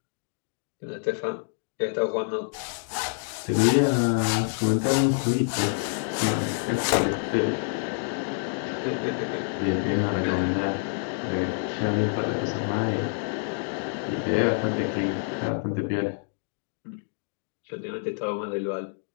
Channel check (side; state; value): right; silent; digital silence